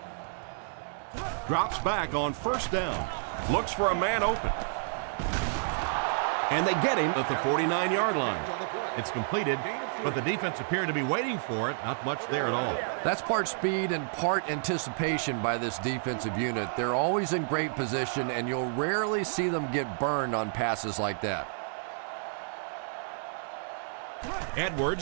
Drops back on first down. Looks for a man open. And they get him at the 49-yard line. It's completed, but the defense appeared to be waiting for it. Not much there at all. That's part speed and part anticipation by this defensive unit. They're always in great position, and you'll rarely see them get burned on passes like that.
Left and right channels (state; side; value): silent; left; digital silence